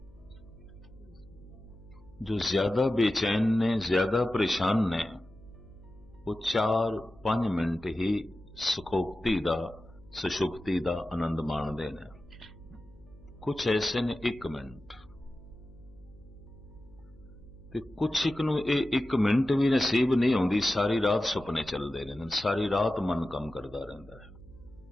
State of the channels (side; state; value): left; noise; hum, 24 dB below the sound